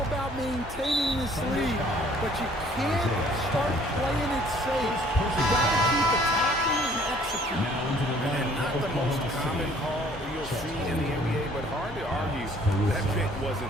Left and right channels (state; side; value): normal; both; correlation 0.58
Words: about maintaining this lead, but you can't start playing it safe. You gotta keep attacking and executing. And not the most common call you'll see in the NBA, but hard to argue that pick